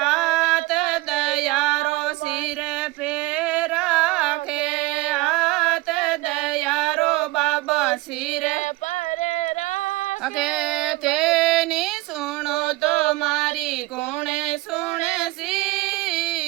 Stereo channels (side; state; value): left; quieter; 20.3 dB